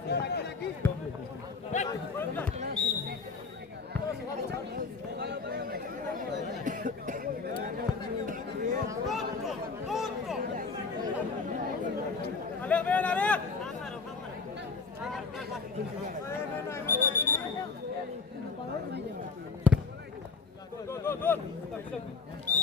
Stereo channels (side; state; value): right; quieter; 4.6 dB